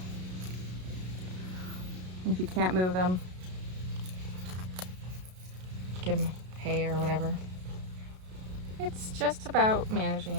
if you can't move them, give them hay or whatever. It's just about managing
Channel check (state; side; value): late; left; 33 ms